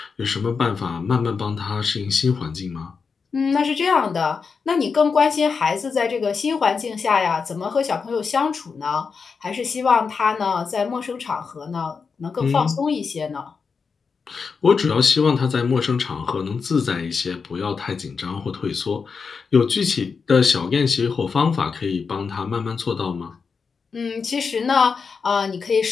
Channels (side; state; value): right; quieter; 5.4 dB